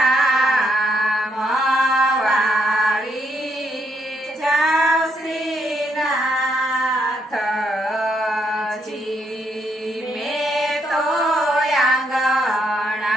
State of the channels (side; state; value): both; normal; correlation 0.76